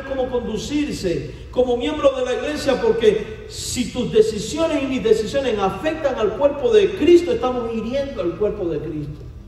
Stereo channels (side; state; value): both; identical; correlation 1.00